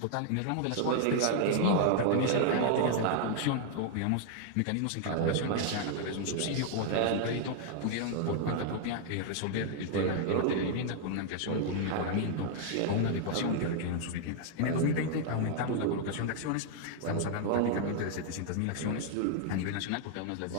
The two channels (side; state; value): both; different; correlation 0.00